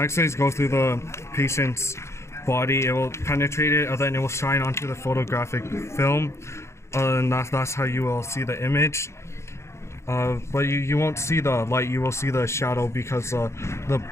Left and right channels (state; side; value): late; right; 0.13 ms